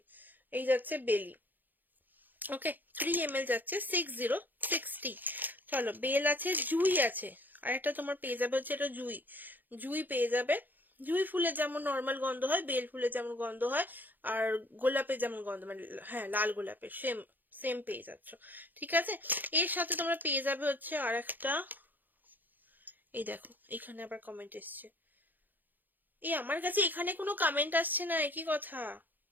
এই যাচ্ছে বেলি, ওকে। 3 ml যাচ্ছে 6060। চলো, বেল আছে, জুই আছে, আর একটা তোমার পেয়ে যাবে হচ্ছে এটা জুই। জুই পেয়ে যাবে। জুই ফুলের যেমন নর্মাল গন্ধ হয়, বেল ফুলের যেমন গন্ধ হয়, আর গোলাপের যেমন গন্ধ, মানে হ্যাঁ লাল গোলাপের সেম সেম পেয়ে যাচ্ছ, ঠিক আছে। এর সাথে তোমরা পেয়ে যাবে হচ্ছে আর একটা, এই দেখো এখানে আবার কমেন্ট এসছে। আমার কাছে এখানে কোনো কমেন্ট আসছে না, একই কথা।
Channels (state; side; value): late; left; 0.087 ms